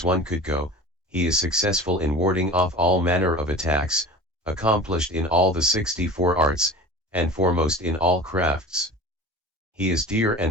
one could go, he is successful in warding off all manner of attacks, accomplished in all the 64 arts, and foremost in all crafts. He is dear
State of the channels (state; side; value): normal; both; correlation 0.36